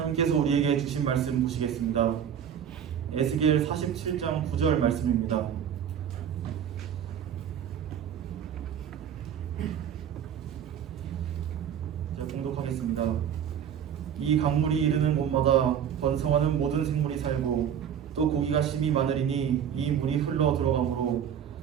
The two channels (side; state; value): left; quieter; 8.8 dB